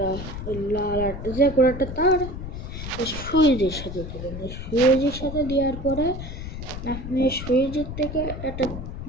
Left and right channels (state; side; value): noise; left; rumble, 8 dB below the sound